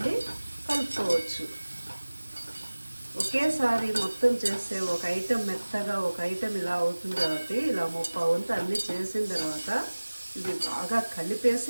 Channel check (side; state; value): both; inverted; correlation -1.00